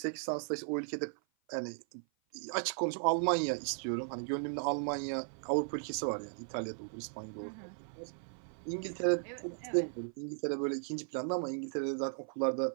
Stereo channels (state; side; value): silent; left; 53 dB below the other